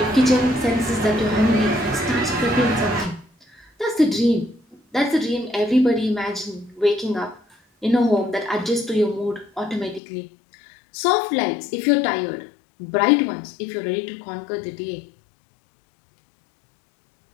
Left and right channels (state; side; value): drops out; right; at 10.0 s